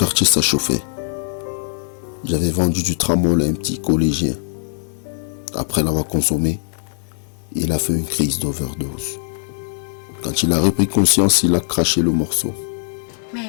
ça chauffait. J'avais vendu du tramol à un petit collégien. Après l'avoir consommé, il a fait une crise d'overdose. Quand il a repris conscience, il a craché le morceau. Mais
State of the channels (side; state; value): right; silent; digital silence